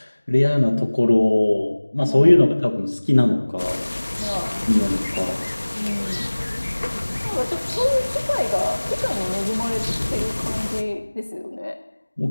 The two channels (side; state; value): both; inverted; correlation -1.00